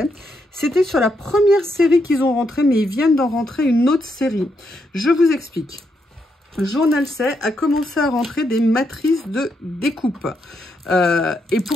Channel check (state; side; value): normal; both; correlation 0.80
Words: C'était sur la première série qu'ils ont rentré, mais ils viennent d'en rentrer une autre série. Je vous explique. Journal C a commencé à rentrer des matrices de découpe. Et